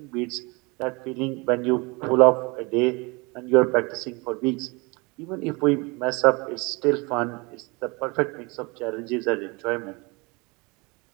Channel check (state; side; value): quieter; left; 27.4 dB